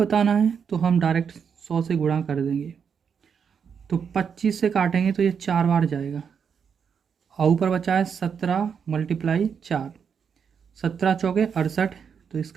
है तो हम डायरेक्ट 100 से गुणा कर देंगे। तो 25 से काटेंगे तो ये 4 बार जाएगा और ऊपर बचा है 17 × 4, 17 चौके 68, तो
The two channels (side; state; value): left; quieter; 6.8 dB